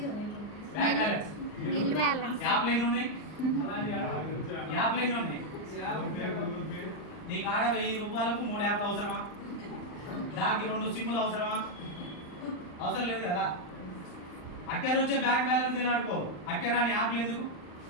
Bank balance bill balance. యాప్లు ఎన్ని ఉన్నాయి? యాప్లు ఎన్ని ఉన్నాయి? నీకు ఆడ 1000 రూపాయలకు 3 యాప్లు అవసరమా? దానికి 2 సిమ్ములు అవసరమా? అవసరం లేదు కదా. అక్కడ వచ్చే బ్యాంక్ బ్యాలెన్స్ తినడుకో. అక్కడ రాని యాప్లు ఎందుకు?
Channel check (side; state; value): right; late; 39 ms